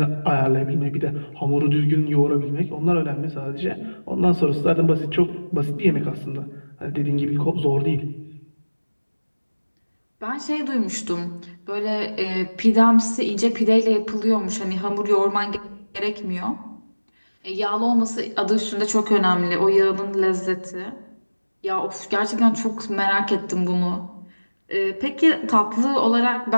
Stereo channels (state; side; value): inverted; both; correlation -1.00